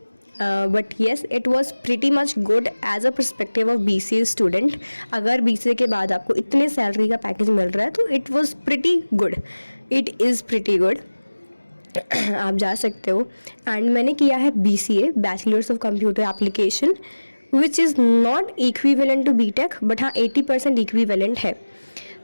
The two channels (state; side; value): inverted; both; correlation -1.00